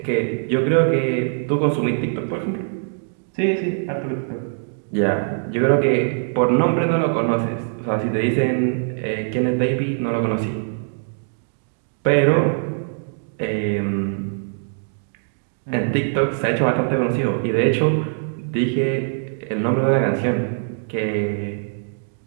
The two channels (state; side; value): silent; left; digital silence